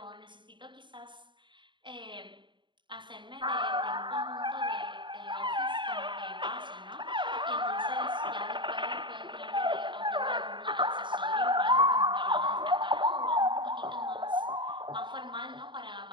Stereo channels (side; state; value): left; late; 0.23 ms